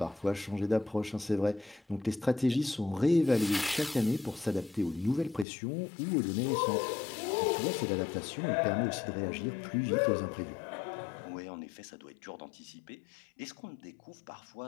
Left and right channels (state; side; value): drops out; right; at 5.5 s